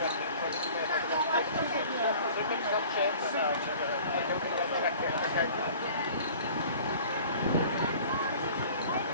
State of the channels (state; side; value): inverted; both; correlation -0.47